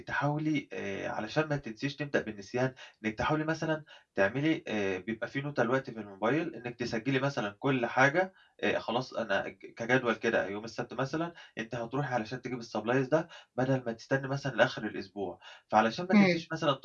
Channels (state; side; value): identical; both; correlation 1.00